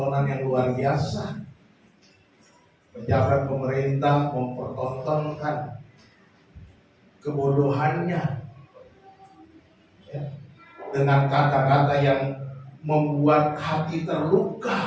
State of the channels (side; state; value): both; identical; correlation 1.00